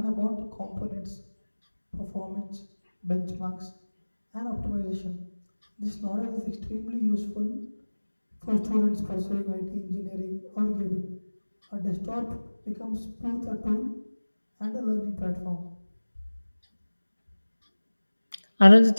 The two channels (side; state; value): both; inverted; correlation -1.00